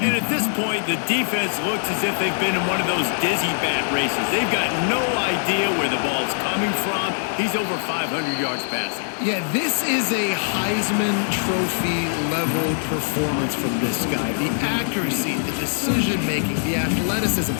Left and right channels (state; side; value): silent; right; digital silence